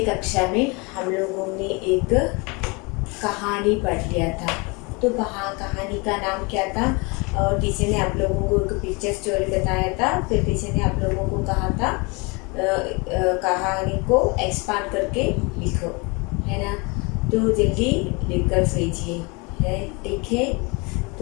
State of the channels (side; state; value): right; quieter; 28.6 dB